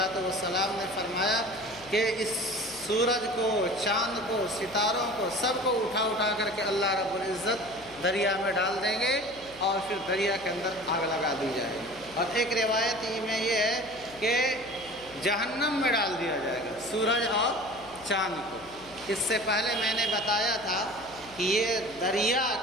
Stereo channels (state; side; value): noise; left; hum, 23 dB below the sound